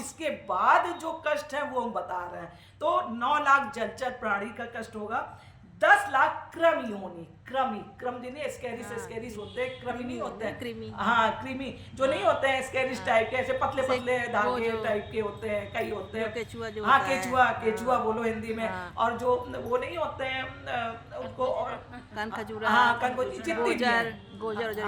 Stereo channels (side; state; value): both; identical; correlation 1.00